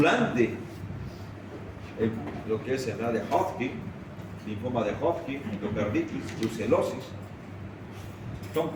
en lo que es enfermedad de Hodgkin, linfoma de Hodgkin, endocarditis, brucelosis, son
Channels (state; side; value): identical; both; correlation 1.00